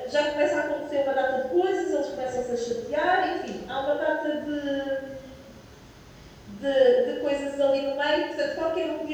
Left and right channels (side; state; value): both; identical; correlation 1.00